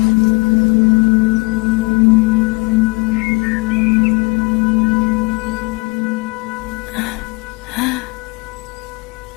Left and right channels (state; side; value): quieter; right; 27.7 dB